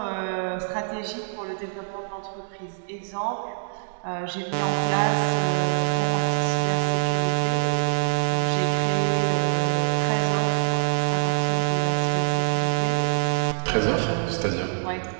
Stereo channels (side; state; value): left; silent; digital silence